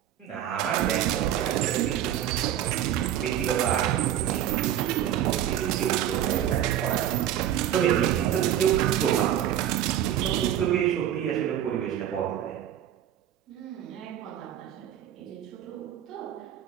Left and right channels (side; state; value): left; quieter; 11.0 dB